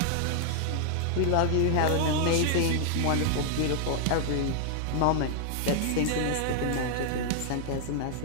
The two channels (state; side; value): different; both; correlation -0.01